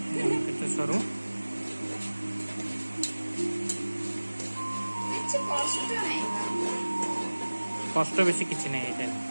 सरू कष्ट बेसी किसी नहीं है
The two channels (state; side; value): inverted; both; correlation -1.00